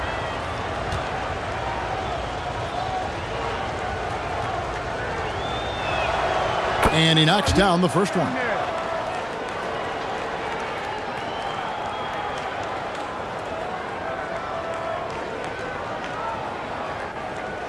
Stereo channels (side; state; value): both; identical; correlation 1.00